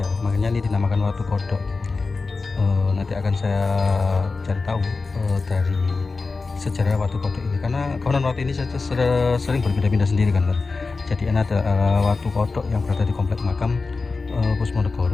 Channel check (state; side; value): quieter; right; 4.1 dB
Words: makanya ini dinamakan batu kodok. Nanti akan saya cari tahu dari sejarah watu kodok ini, karena konon watu ini sering berpindah-pindah sendiri kan. Jadi ini ada watu kodok yang berada di komplek makam